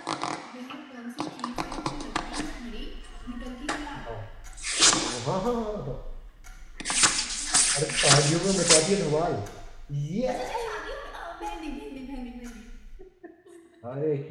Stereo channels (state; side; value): identical; both; correlation 1.00